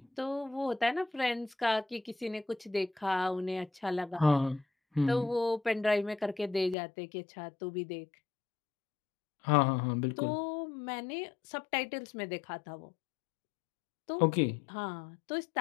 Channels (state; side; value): drops out; right; at 6.8 s